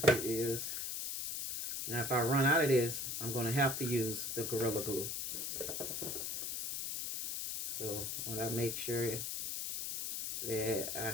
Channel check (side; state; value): left; noise; hiss, 3 dB below the sound